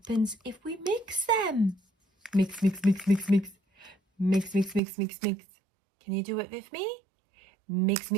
if we mix them? Mix, mix, mix, mix, mix. Mix, mix, mix, mix, mix. Can you do it with me? Mix,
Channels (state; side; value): drops out; left; at 4.8 s